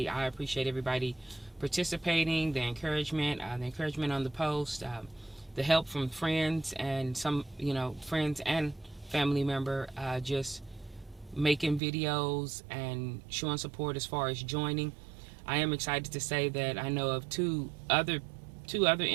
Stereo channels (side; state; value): left; drops out; at 11.8 s